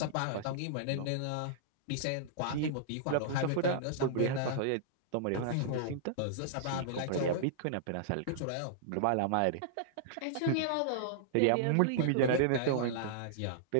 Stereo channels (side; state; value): both; different; correlation -0.02